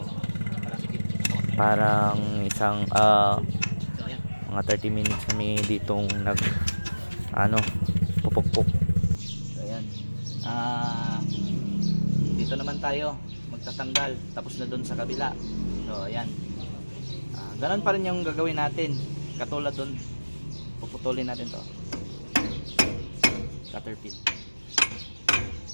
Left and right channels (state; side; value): inverted; both; correlation -1.00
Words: parang isang mga 30 minutes kami ditong pupukpok. So, ayan. Dito naman tayo magtatanggal. Tapos na dun sa kabila. So, ayan. Ganun pa rin yung gagawin natin. Katulad dun, puputulin natin to. Cutter pin.